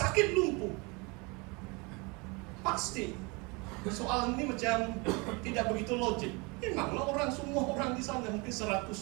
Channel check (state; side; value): quieter; left; 28.5 dB